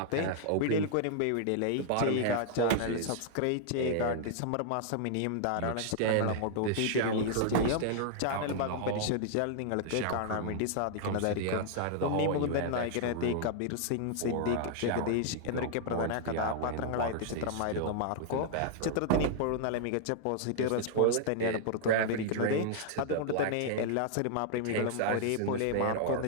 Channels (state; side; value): different; both; correlation -0.01